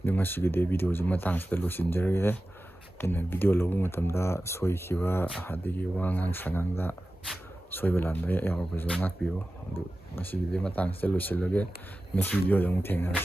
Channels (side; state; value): both; normal; correlation 0.95